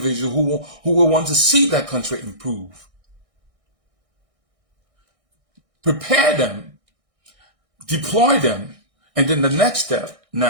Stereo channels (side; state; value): left; late; 1.6 ms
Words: who will want to see that country improve. Prepare them, deploy them, and then the next step